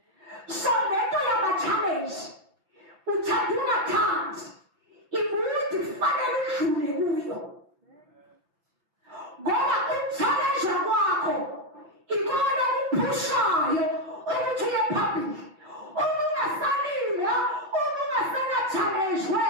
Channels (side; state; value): left; late; 5.9 ms